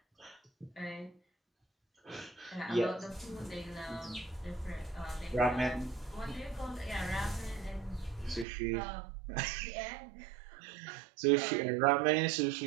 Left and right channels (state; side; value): drops out; left; at 8.5 s